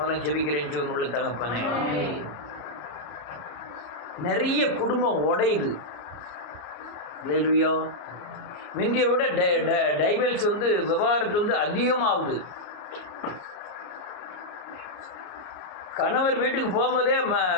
ஜெபிக்கிறேன் ஜீவன் உள்ள தகப்பனே. நிறைய குடும்பம் உடையுது. ஹல்லேலூயா. முந்தியை விட டைவர்ஸ் விவகாரத்து அதிகமாகுது. கணவர் வீட்டுக்கு போகும்போதே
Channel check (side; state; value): right; late; 33 ms